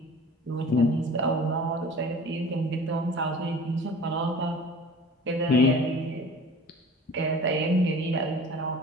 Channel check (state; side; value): normal; both; correlation 0.43